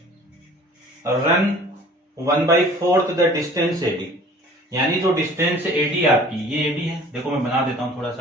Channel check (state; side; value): normal; both; correlation 0.49